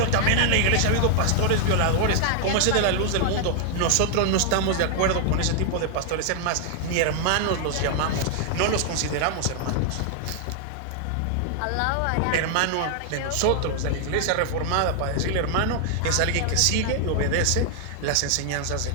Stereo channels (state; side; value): different; both; correlation 0.00